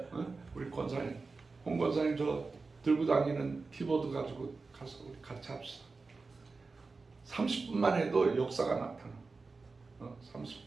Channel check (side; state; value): left; quieter; 4.0 dB